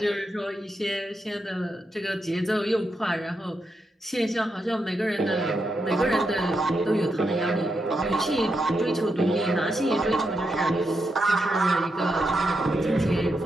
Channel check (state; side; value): normal; both; correlation 0.84